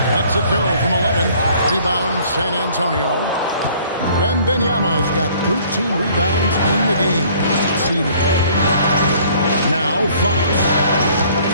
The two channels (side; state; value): both; inverted; correlation -0.56